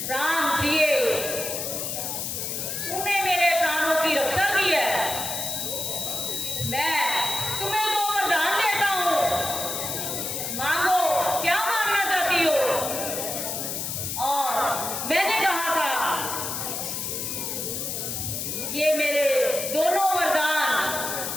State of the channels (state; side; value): noise; left; hiss, 3 dB below the sound